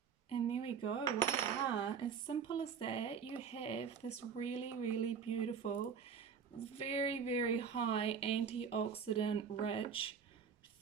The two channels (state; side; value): quieter; left; 6.7 dB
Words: And there we go, voila. As simple as that, you have this really, really beautiful, very, very high antioxidant rich